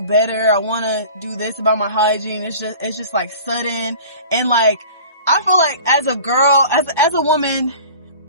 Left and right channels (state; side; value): inverted; both; correlation -0.42